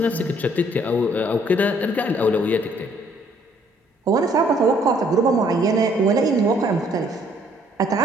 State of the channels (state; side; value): normal; both; correlation 0.64